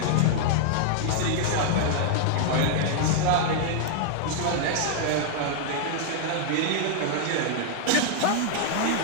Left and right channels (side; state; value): both; different; correlation -0.01